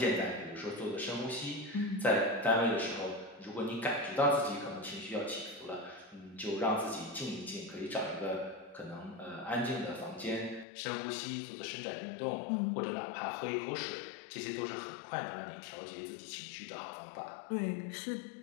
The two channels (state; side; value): drops out; right; at 10.7 s